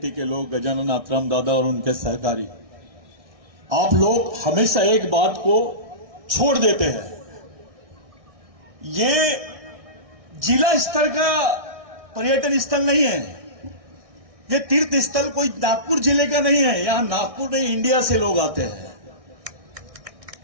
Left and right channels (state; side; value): late; left; 1.6 ms